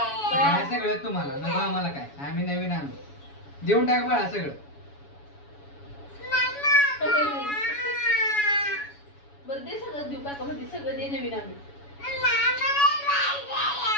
काय सगळं तुम्हाला नको आम्हाला काय? आम्ही नवीन आणू. देऊन टाक बाळा सगळं. बरं दे सगळं देऊ काका म्हणजे सगळं दे नवीन आणू.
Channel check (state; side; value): late; right; 7.1 ms